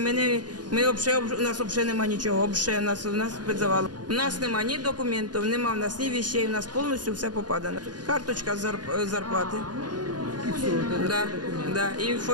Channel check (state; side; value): late; left; 0.69 ms